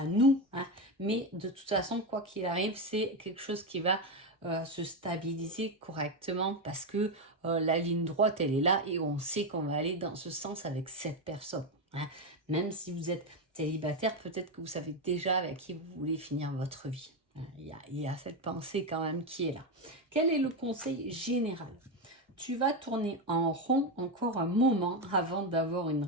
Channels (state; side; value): normal; both; correlation 0.10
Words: nous, hein. Mais de toute façon, quoi qu'il arrive, c'est quelque chose qui va se stabiliser correctement parce que la ligne droite, elle est là et on sait qu'on va aller dans ce sens avec cette personne. Hein. Même si vous êtes célibataire, peut-être que vous savez déjà avec qui vous voulez finir votre vie. Il y a cette pensée quand même qui est là. Quel est le conseil général? Tu vas tourner en rond encore un moment avant d'avoir une